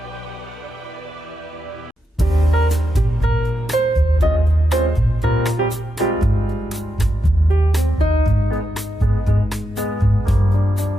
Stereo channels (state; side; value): normal; both; correlation 0.85